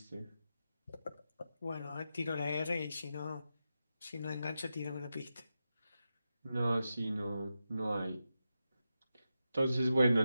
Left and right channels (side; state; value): both; inverted; correlation -0.89